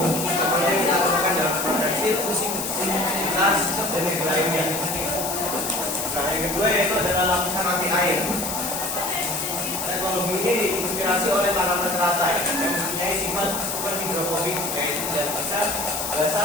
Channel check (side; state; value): left; noise; hiss, 4 dB below the sound